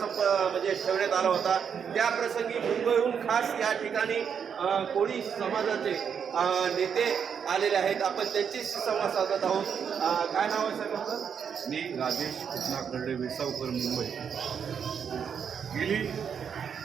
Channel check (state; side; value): quieter; left; 7.3 dB